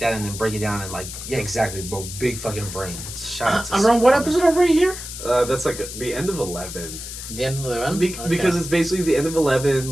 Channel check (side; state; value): left; noise; hiss, 9 dB below the sound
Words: and then break it down and like, yeah, exactly, bro, big fucking brain. Shout out to around what episode are we here? That's like the end of 11. The end of 11? Because it's basically the end of 11.